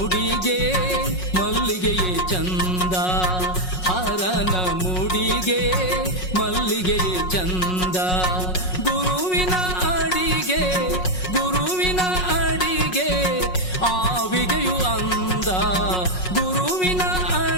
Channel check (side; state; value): right; late; 5.5 ms